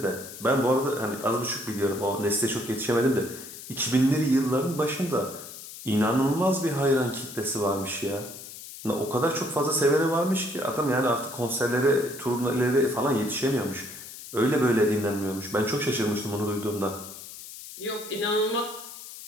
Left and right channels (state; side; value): noise; left; hiss, 13 dB below the sound